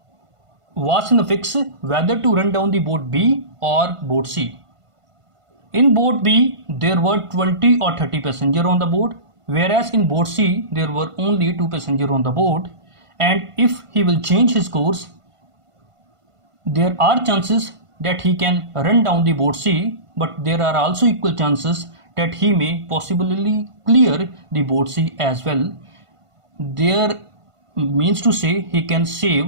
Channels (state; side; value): late; left; 1.5 ms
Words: was in a fix whether to run down the boat B or boat C. In boat B, there were 20 or 30 passengers on the boat, whereas in boat C, there were only 2 passengers on the boat. And if he will change his course, there are chances that he can run down the boat C, but there are also equal chances that he may possibly clear the boat C as well. There means to say he can